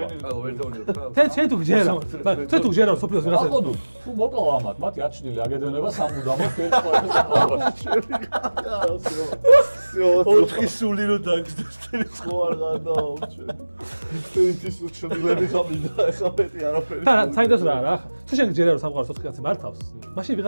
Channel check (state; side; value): inverted; both; correlation -1.00